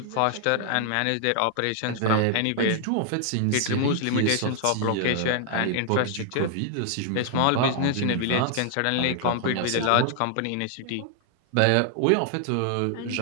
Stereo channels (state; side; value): different; both; correlation 0.00